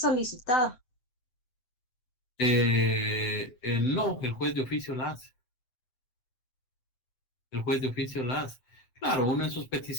No, el juez de oficio la hace. El juez de oficio la hace. Claro, uno en sus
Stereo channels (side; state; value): right; late; 7.9 ms